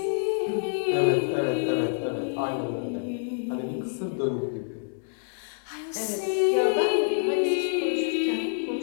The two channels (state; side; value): silent; right; digital silence